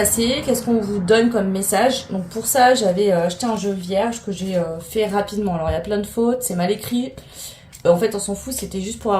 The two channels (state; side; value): identical; both; correlation 1.00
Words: qu'est-ce qu'on vous donne comme message. Donc pour ça, j'avais acheté un jeu vierge que j'ai fait rapidement. Alors il y a plein de fautes, c'est mal écrit. En fait, on s'en fout, c'était juste pour